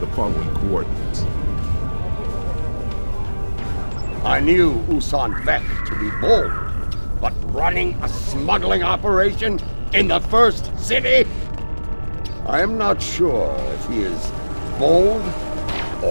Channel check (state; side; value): inverted; both; correlation -1.00